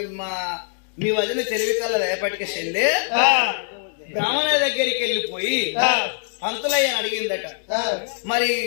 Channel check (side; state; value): right; silent; digital silence